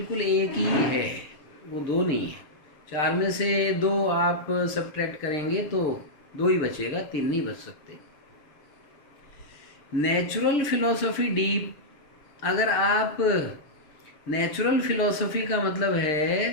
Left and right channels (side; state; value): right; late; 6.7 ms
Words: एक ही है, वो 2 नहीं है। 4 में से 2 आप सब्ट्रैक्ट करेंगे तो 2 ही बचेगा, 3 नहीं बच सकते। नेचुरल फिलॉसफी डीप, अगर आप नेचुरल फिलॉसफी का मतलब